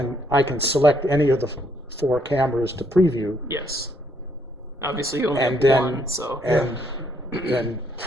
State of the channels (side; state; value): both; normal; correlation 0.71